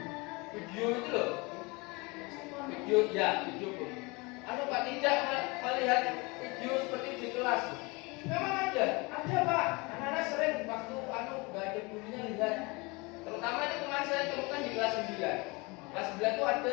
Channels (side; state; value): right; quieter; 26.5 dB